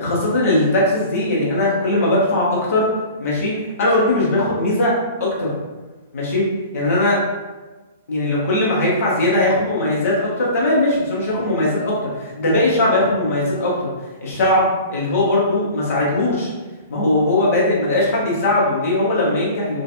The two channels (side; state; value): both; inverted; correlation -0.40